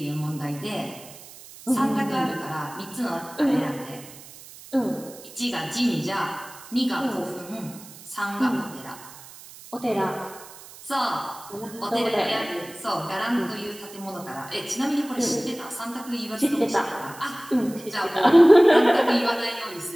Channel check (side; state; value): right; noise; hiss, 18 dB below the sound